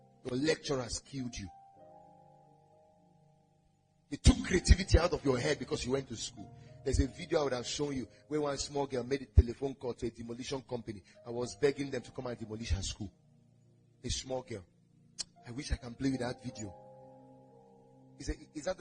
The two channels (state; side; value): identical; both; correlation 1.00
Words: Your lecturers killed you. They took creativity out of your head because you went to school. There's a video I would have shown you where one small girl made a telephone call to a demolition company. I was begging them to come and demolish her school. A small girl. I wish I can play with that video. He said, "Is that